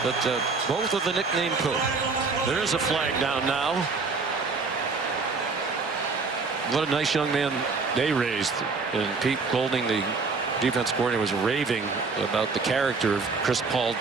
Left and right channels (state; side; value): quieter; left; 4.4 dB